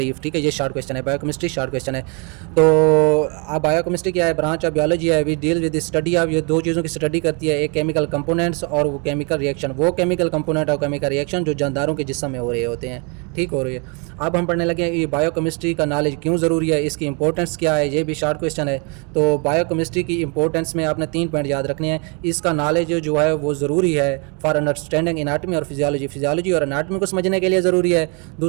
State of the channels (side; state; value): left; quieter; 33.7 dB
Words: ठीक है, ये शॉर्ट क्वेश्चन है, बायोकेमिस्ट्री शॉर्ट क्वेश्चन है। तो अब बायोकेमिस्ट्री क्या है? ब्रांच ऑफ बियोलॉजी है, we deal with study of, ये दो चीज़ों की स्टडी करती है, एक केमिकल कंपोनेंट्स और वो केमिकल रिएक्शन, वो केमिकल कंपोनेंट और केमिकल रिएक्शन जो जानदारों के जिस्म में हो रहे होते हैं। ठीक हो रही है। अब हम पढ़ने लगे हैं ये बायोकेमिस्ट्री का नॉलेज क्यों ज़रूरी है, इसकी इंपॉर्टेंस क्या है, ये भी शॉर्ट क्वेश्चन है। तो बायोकेमिस्ट्री की इंपॉर्टेंस में आपने 3 पॉइंट याद रखने हैं। इसका नॉलेज जो है वो ज़रूरी है फॉर अंडरस्टैंडिंग एनाटमी और फिजियोलॉजी, फिजियोलॉजी और एनाटमी को समझने के लिए ज़रूरी है।